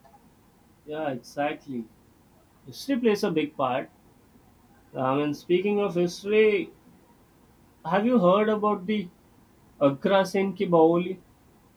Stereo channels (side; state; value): both; identical; correlation 1.00